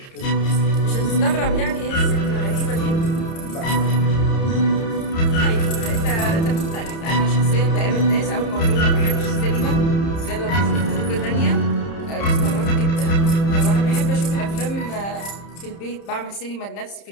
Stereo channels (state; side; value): late; right; 30 ms